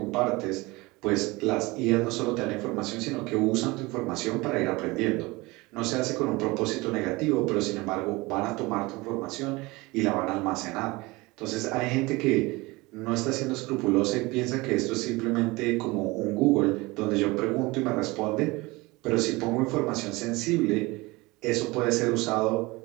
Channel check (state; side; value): quieter; left; 22.8 dB